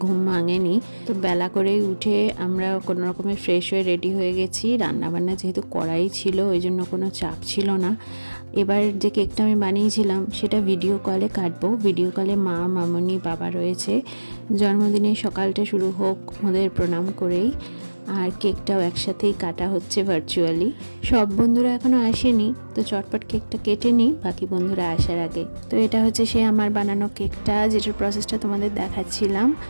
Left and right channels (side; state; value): both; inverted; correlation -1.00